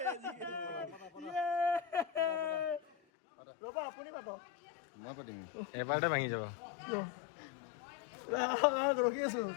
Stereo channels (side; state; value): right; drops out; at 3.0 s